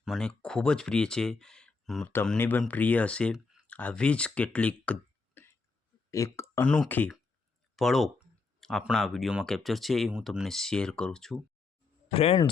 મને ખૂબ જ પ્રિય છે। તમને પણ પ્રિય હશે। આવી જ કેટલીક એક અનોખી પળો આપણા વિડીયોમાં કેપ્ચર છે, એ હું તમને શેર કરું છું।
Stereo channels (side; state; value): right; quieter; 4.2 dB